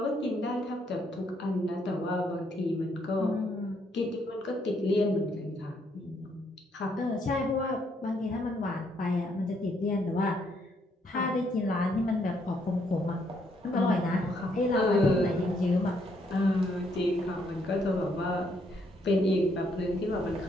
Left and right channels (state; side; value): normal; both; correlation 0.72